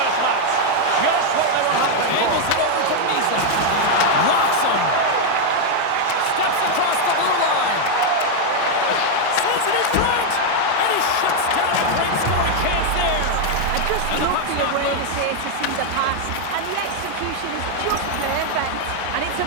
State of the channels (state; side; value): different; both; correlation 0.00